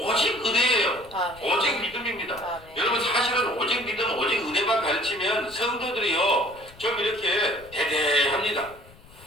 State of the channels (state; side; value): noise; left; rumble, 23 dB below the sound